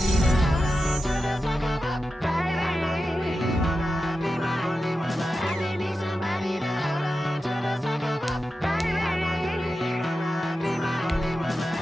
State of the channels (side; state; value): both; normal; correlation 0.91